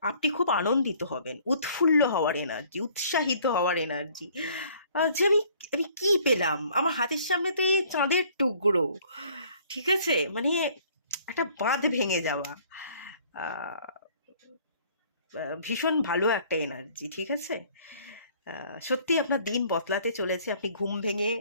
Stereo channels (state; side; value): inverted; both; correlation -0.57